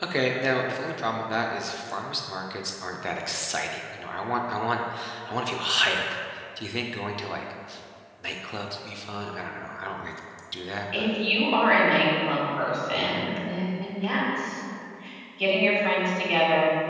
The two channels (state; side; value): identical; both; correlation 1.00